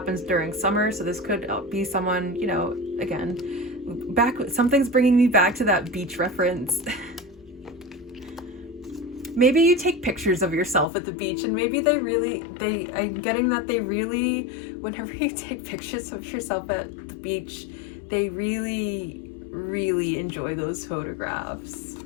during summer. So this could be someone, you know, again, something's bringing me back to that beach reference. Maybe you take pictures of yourself at the beach, and maybe I'm getting that they really, whenever you take pictures of yourself at the beach, they really, really enjoy those photographs.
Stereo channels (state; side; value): drops out; right; at 10.9 s